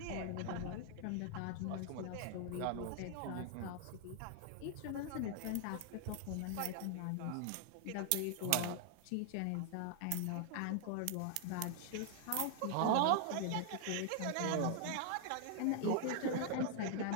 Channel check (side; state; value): both; different; correlation 0.00